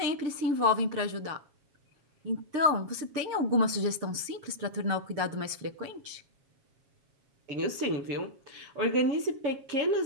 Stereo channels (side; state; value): left; late; 7.3 ms